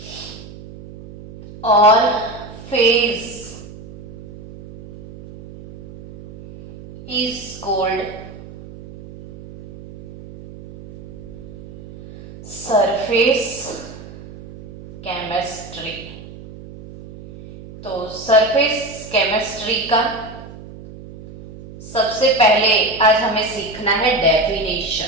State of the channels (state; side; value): noise; right; hum, 16 dB below the sound